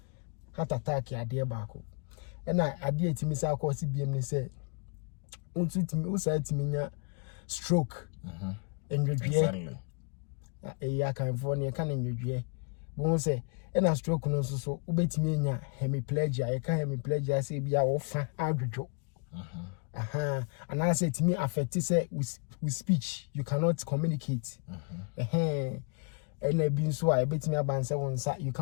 heart attack ya de baako na ade etimi sa akọ si biem ne say untu timi usa timi nya stroke Exactly. Ya kan for ne kan nwedwe bo say na stroke no so ubetimi nya hemiplegia e ka hemiplegia say bia wo fa adwodwo and I say timi affect say with speech you cannot communicate and a being so I bet me about you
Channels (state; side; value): quieter; right; 35.8 dB